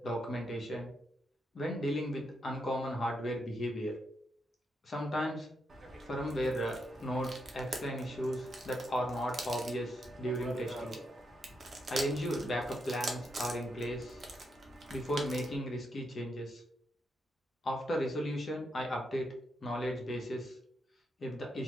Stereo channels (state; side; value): normal; both; correlation 0.81